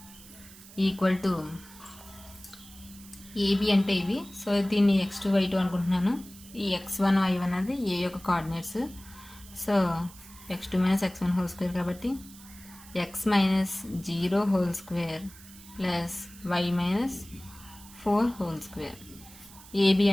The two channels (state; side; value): noise; right; hiss, 20 dB below the sound